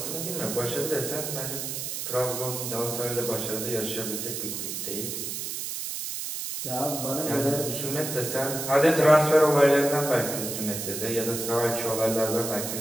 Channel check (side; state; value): right; noise; hiss, 5 dB below the sound